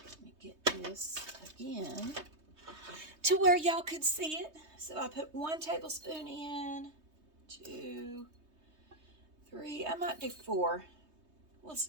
me get this again to where y'all could see it. So I put 1 tablespoon in, 2, 3, I might do 4. We'll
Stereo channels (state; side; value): late; left; 3.2 ms